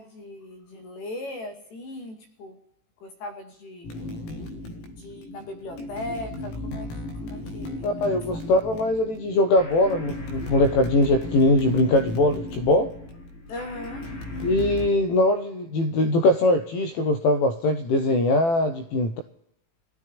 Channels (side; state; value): right; late; 18 ms